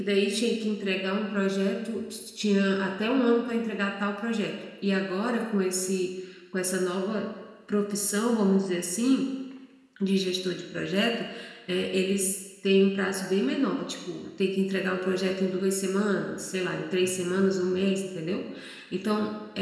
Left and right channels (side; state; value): both; identical; correlation 1.00